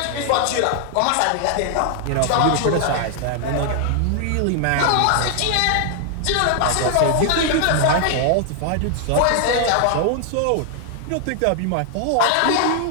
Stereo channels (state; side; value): different; both; correlation 0.00